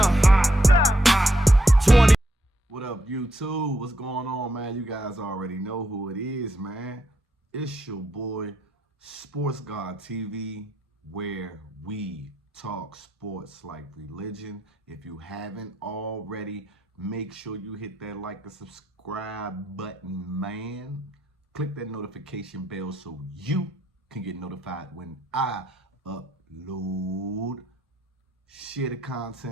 20. What up, YouTube? What's going on, man? You guys already know who it is, man. It's your boy, Sports God TV, where we talk sports like religion. If you haven't already, make sure you hit that like and subscribe button, man. Click that notification bell so you can get notified when I upload. Share the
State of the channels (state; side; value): normal; both; correlation 0.78